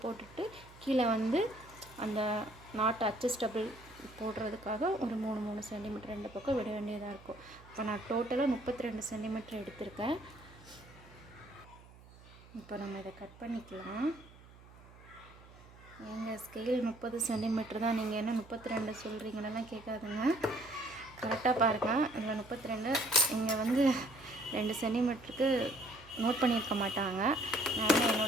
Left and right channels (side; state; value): right; noise; hum, 21 dB below the sound